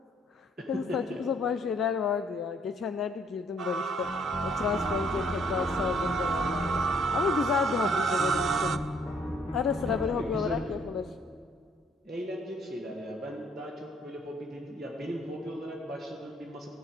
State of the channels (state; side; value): normal; both; correlation 0.64